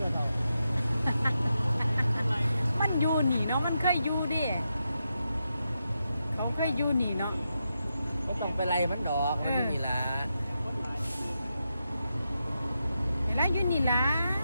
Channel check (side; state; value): both; inverted; correlation -0.86